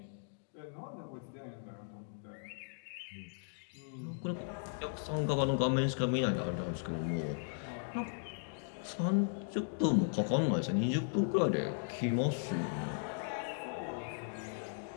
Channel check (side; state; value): right; silent; digital silence